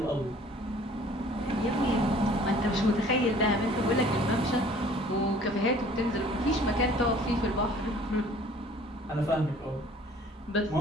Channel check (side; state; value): both; normal; correlation 0.52